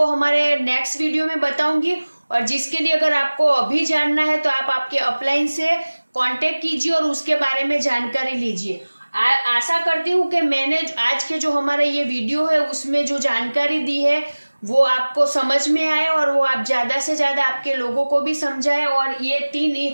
हमारे नेक्स्ट वीडियो में बताऊंगी। और जिसके लिए अगर आपको अभी जानना है तो आप आपके अपलाइन से कांटेक्ट कीजिए और उसके बारे में जानकारी लीजिए। आशा करती हूँ कि मैंने आज के जो हमारा ये वीडियो है उसमें जो जानकारी दी है वो आपको समझ में आए और वो आप ज़्यादा से ज़्यादा आपके लोगों को भी समझाए। और ये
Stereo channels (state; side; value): inverted; both; correlation -1.00